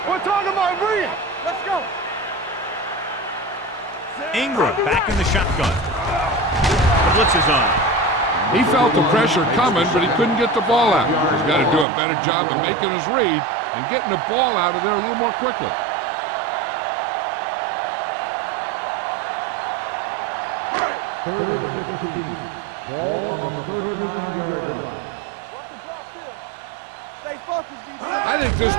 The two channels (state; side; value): drops out; left; at 11.9 s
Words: We're talking about Rhea. Let's go. Ingram back in the shotgun. The blitz is on. He felt the pressure coming, but he couldn't get the ball out. He's got to do a better job of making his read and getting the ball out of there a little more quickly. Third and 15. Ball on the 39-yard line. Watch the draw still. Stay focused, defense. I think this